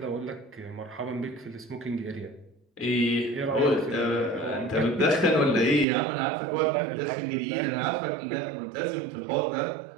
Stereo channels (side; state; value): left; drops out; at 5.9 s